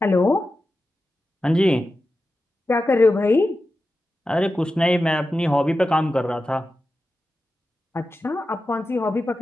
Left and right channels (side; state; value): both; normal; correlation 0.92